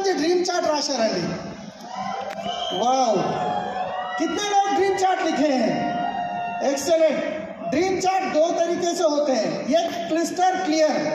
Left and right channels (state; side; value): identical; both; correlation 1.00